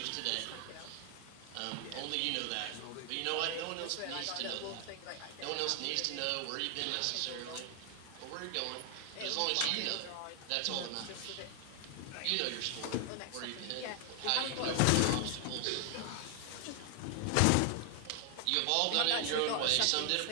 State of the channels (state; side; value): different; both; correlation 0.00